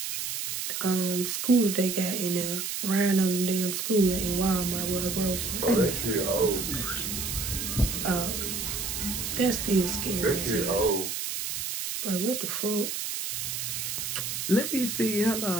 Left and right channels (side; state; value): right; noise; hiss, 3 dB below the sound